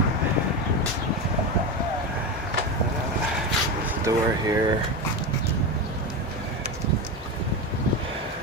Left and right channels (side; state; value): both; normal; correlation 0.18